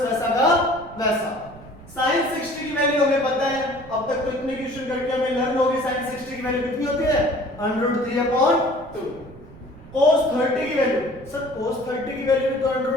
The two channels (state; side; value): noise; right; rumble, 19 dB below the sound